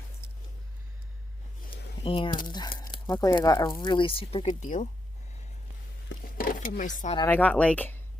And luckily I got a really super good deal from my son, and I got like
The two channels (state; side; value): normal; both; correlation 0.82